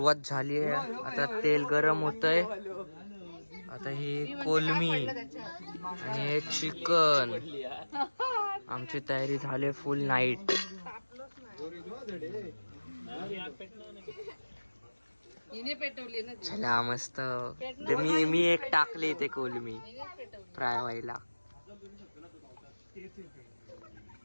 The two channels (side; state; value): both; inverted; correlation -1.00